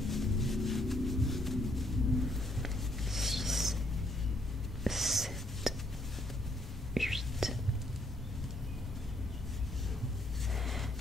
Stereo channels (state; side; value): normal; both; correlation 0.71